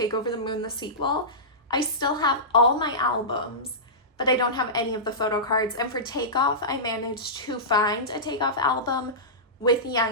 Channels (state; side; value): normal; both; correlation -0.17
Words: Over the Moon, the sequel. I still have all my albums, but I don't have any of the photo cards. And for Takeoff, I managed to find a Takeoff album with